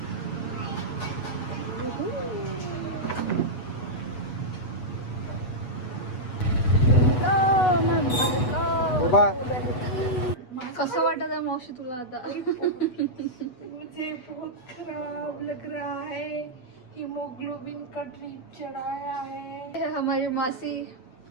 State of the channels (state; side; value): late; right; 8.1 ms